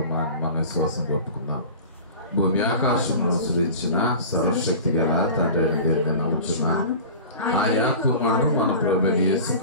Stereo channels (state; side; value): inverted; both; correlation -0.36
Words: మన విశ్వాసం ఒప్పుకున్నాం. భూమి ఆకాశంలో సృజించిన సర్వశక్తి గల తండ్రి దేవుని నమ్ముచున్నాను. ఆయా కుమారుడు మన ప్రభువైన